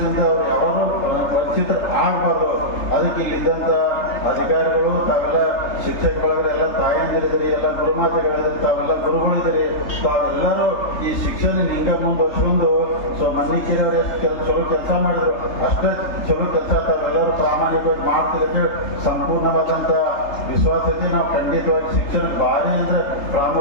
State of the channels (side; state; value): right; late; 3.3 ms